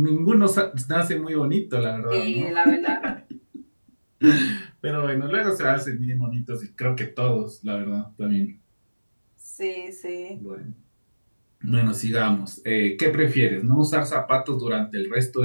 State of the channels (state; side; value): inverted; both; correlation -1.00